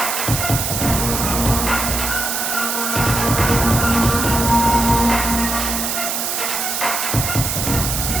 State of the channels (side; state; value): right; noise; hiss, 1 dB below the sound